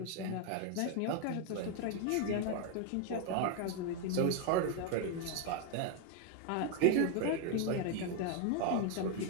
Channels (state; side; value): different; both; correlation 0.01